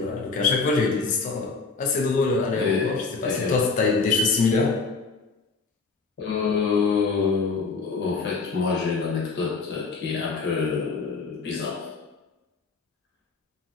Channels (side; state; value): right; quieter; 4.4 dB